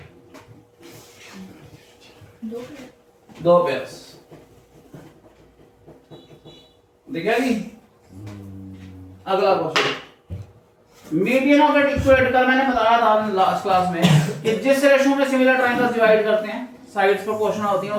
दो पेयर्स दिखेगी। अगला question, median of eight equate. कल मैंने बताया था लास्ट क्लास में कि जिस रेशो में सिमिलर ट्रायंगल्स डिवाइड करते हैं, साइड्स प्रोपोर्शनल होती हैं,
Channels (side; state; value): both; identical; correlation 1.00